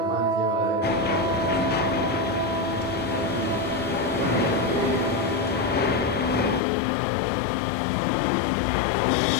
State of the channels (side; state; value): right; drops out; at 6.6 s